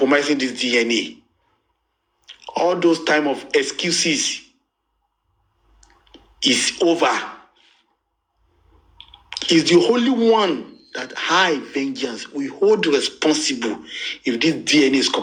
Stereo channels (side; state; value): both; identical; correlation 1.00